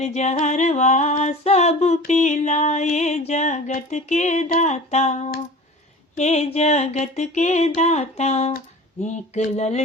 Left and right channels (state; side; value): normal; both; correlation 0.39